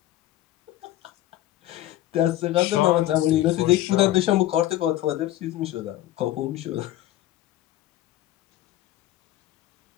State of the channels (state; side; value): quieter; right; 14.5 dB